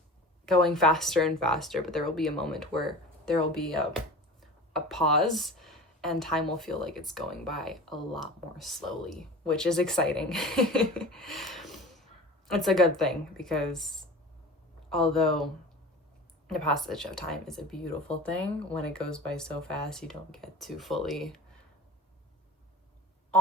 going faster and faster, but there will be a moment where there will be a pause and time will feel like it's going by a lot more slowly, which is exciting. It's a good thing, because although the passage of time is a beautiful thing, when it goes by so fast, you don't get to fully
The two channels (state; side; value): normal; both; correlation 0.36